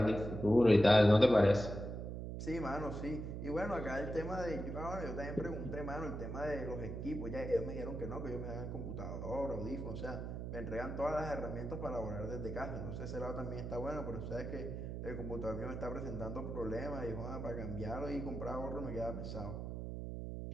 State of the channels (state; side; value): noise; right; hum, 5 dB below the sound